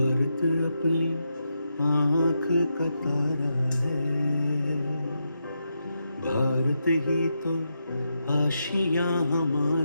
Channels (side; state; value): both; inverted; correlation -0.84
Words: अपनी आँख का तारा है, भारत ही तो आशियाँ